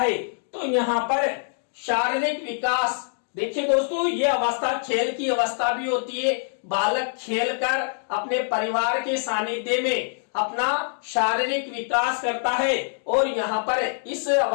तो यहाँ पर शारीरिक विकास, देखिए दोस्तों, ये अवस्था खेल की अवस्था भी होती है। बालक खेलकर अपने परिवार के सानिध्य में अपना शारीरिक विकास करता है, और यहाँ पर इस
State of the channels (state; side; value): silent; right; digital silence